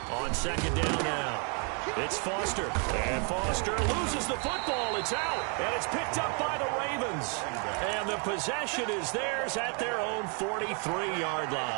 On second down now. It's Foster. And Foster loses the football. It's out. And it's picked up by the Ravens. And the possession is theirs at their own 43-yard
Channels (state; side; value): quieter; left; 37.9 dB